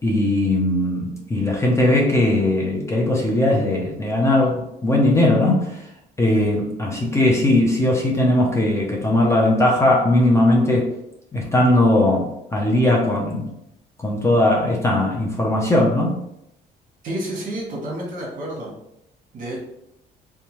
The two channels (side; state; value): both; normal; correlation 0.64